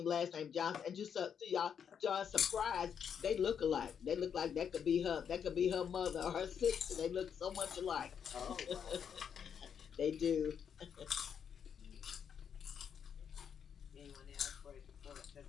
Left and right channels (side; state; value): right; quieter; 7.7 dB